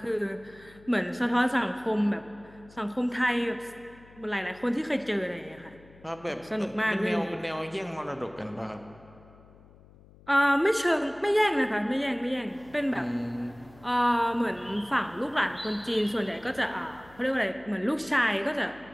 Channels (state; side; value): noise; left; hum, 24 dB below the sound